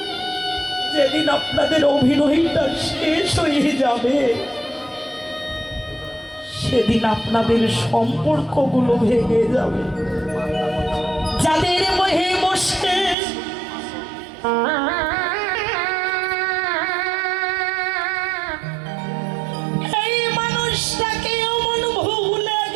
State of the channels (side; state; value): left; drops out; at 13.2 s